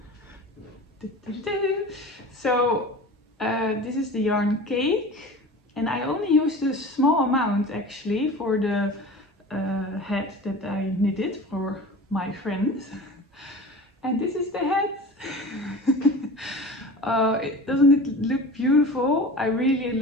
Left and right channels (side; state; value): both; normal; correlation 0.36